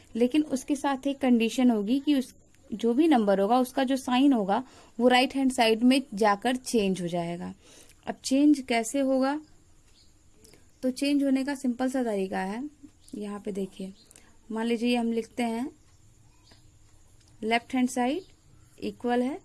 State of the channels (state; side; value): identical; both; correlation 1.00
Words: लेकिन उसके साथ एक कंडीशन होगी कि उस जो भी नंबर होगा उसका जो साइन होगा वो राइट हैंड साइड में जाकर चेंज हो जाएगा। अब चेंज कैसे होगा, तो चेंज होने का सिंपल सा तरीका है। यहाँ पे देखिए, मान लीजिए हम लिखते हैं लेफ्ट हैंड साइड इक्वल है,